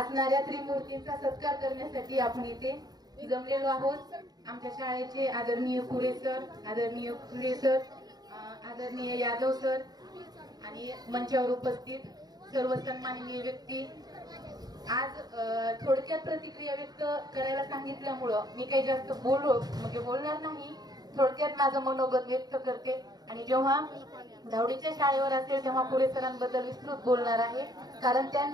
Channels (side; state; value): left; late; 0.19 ms